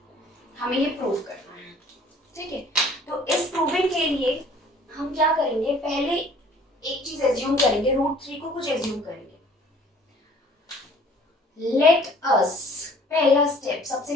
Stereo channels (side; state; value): both; normal; correlation 0.53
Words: हमें ये प्रूव करना है, ठीक है. तो इस प्रूविंग के लिए हम क्या करेंगे? पहले एक चीज एज्यूम करेंगे, रूट 3 को कुछ एज्यूम करेंगे. लेट अस, पहला स्टेप,